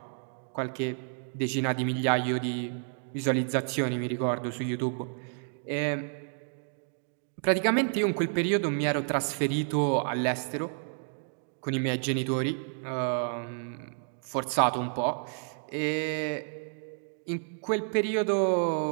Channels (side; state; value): left; silent; 58 dB below the other